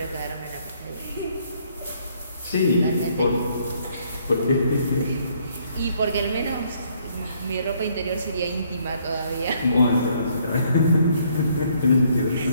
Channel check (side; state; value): both; inverted; correlation -0.67